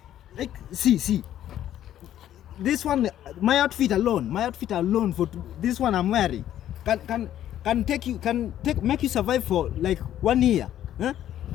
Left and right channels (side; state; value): right; quieter; 11.7 dB